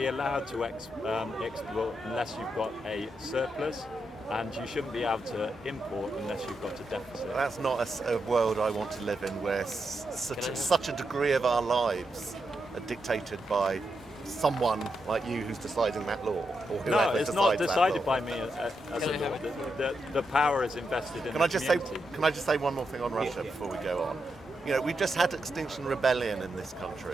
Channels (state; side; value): normal; both; correlation 0.84